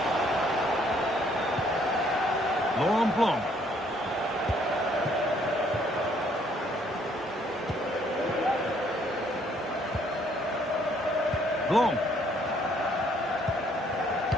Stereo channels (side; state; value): both; normal; correlation 0.65